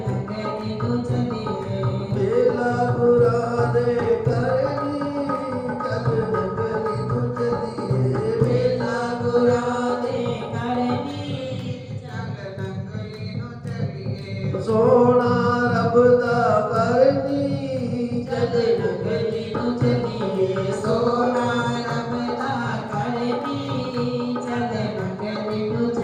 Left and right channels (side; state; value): both; identical; correlation 1.00